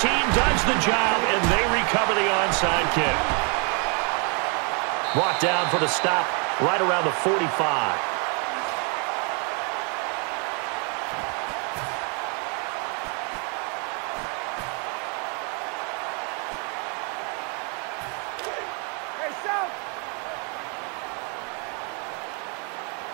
does the job, and they recover the onside kick. Brought down for the stop right around the 45.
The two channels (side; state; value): left; quieter; 36.2 dB